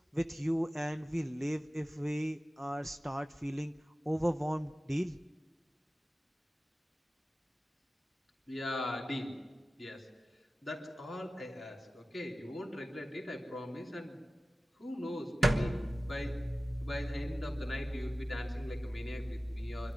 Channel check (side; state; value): both; normal; correlation 0.96